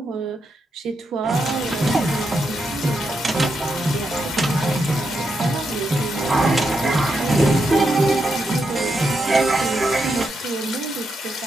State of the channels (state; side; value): normal; both; correlation 0.83